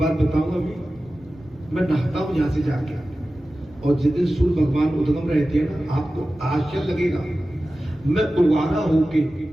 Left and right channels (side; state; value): both; normal; correlation 0.95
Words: बताऊंगा, मैं नहाता हूं यहां से जाके, और जिस दिन सूर्य भगवान उद्गम रहते हैं ना, आपको आश्चर्य लगेगा, मैं उवारा होके